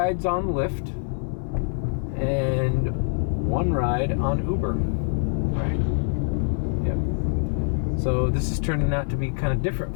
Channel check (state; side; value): silent; right; 62 dB below the other